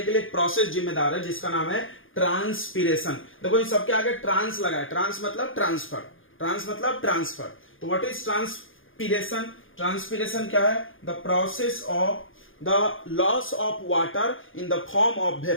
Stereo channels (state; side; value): late; right; 0.58 ms